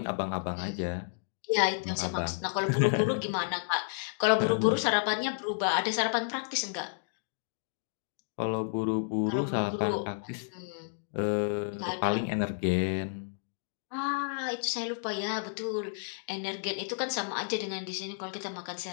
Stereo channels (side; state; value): right; silent; digital silence